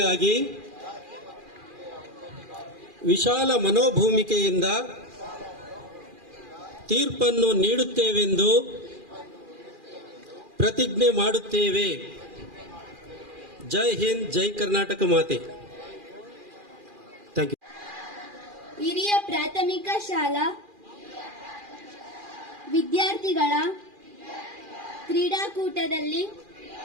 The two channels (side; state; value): left; late; 2.4 ms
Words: ವಿಶಾಲ ಮನೋಭೂಮಿಕೆಯಿಂದ ತೀರ್ಪನ್ನು ನೀಡುತ್ತೇವೆಂದು ಪ್ರತಿಜ್ಞೆ ಮಾಡುತ್ತೇವೆ. ಜೈ ಹಿಂದ್, ಜೈ ಕರ್ನಾಟಕ ಮಾತೆ. Thank you. ಹಿರಿಯ ಪ್ರಾಥಮಿಕ ಶಾಲಾ ವಿದ್ಯಾರ್ಥಿಗಳ ಕ್ರೀಡಾಕೂಟದಲ್ಲಿ